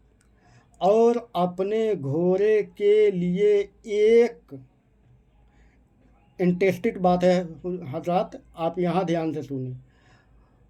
और अपने घोड़े के लिए एक इंटरेस्टेड बात है हजरत, आप यहाँ ध्यान से सुनिए।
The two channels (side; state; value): both; identical; correlation 1.00